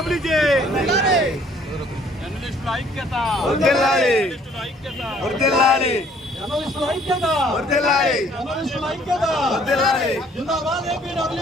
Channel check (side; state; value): both; normal; correlation 0.60